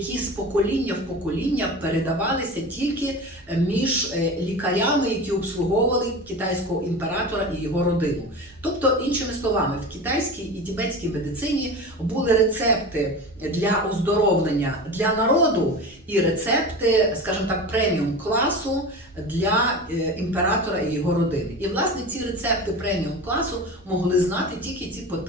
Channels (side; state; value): both; normal; correlation 0.30